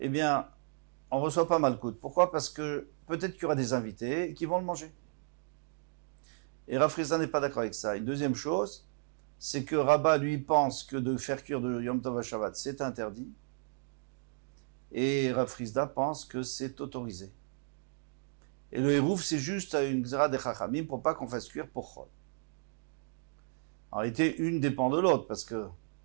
bien, on reçoit pas Malkout. Pourquoi? Parce que peut-être qu'il y aura des invités qui vont le manger. Et Rav Frizda n'est pas d'accord avec ça. Une deuxième chose, c'est que Rabba lui pense que de faire cuire de Yom Tov à Shabbat, c'est interdit. Et Rav Frizda pense que c'est autorisé. Et le Hérouf, c'est juste une Xera de Chachamim pour pas qu'on fasse cuire pour Chol. En réalité, une dépend de l'autre, parce que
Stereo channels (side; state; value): left; silent; digital silence